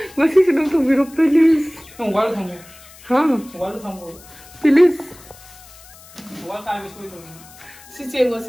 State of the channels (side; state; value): left; noise; hiss, 22 dB below the sound